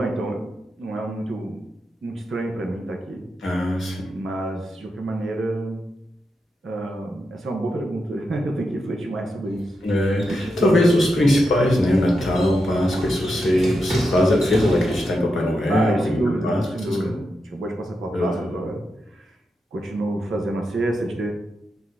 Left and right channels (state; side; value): normal; both; correlation 0.86